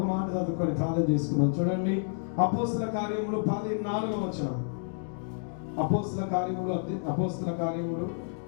మాట చదువుకొని ప్రార్థన చేసుకున్నాం. చూడండి, అపోస్తుల కార్యములు 14వ వచనం. అపోస్తుల కార్యములు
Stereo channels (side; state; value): right; silent; digital silence